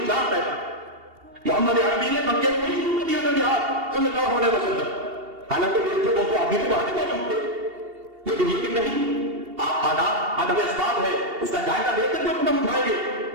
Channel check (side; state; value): left; late; 2.8 ms